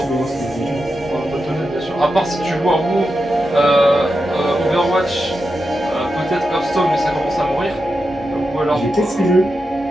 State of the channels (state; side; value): normal; both; correlation 0.88